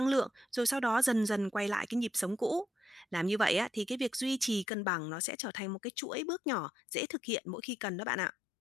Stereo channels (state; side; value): drops out; right; at 4.7 s